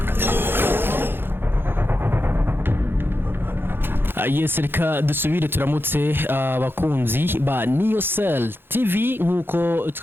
Yes, reka dusubire turamutse abakunzi ba Niocell TV nkuko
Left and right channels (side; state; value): left; late; 0.10 ms